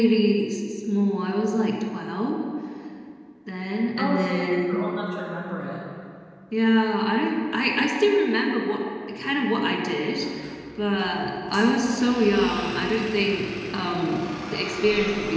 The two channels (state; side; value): identical; both; correlation 1.00